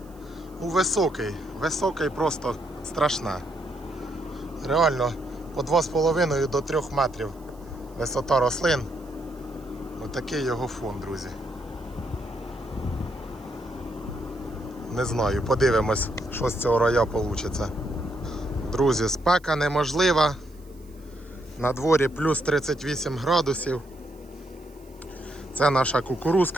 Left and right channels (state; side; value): noise; right; hiss, 29 dB below the sound